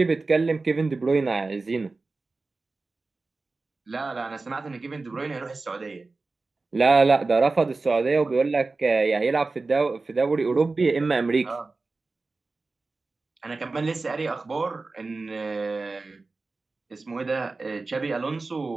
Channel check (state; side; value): quieter; left; 3.7 dB